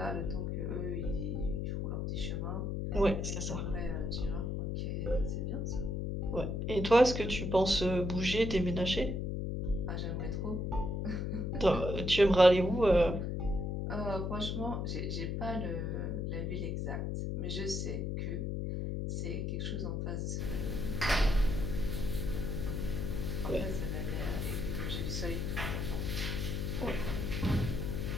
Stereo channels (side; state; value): left; noise; hum, 1 dB below the sound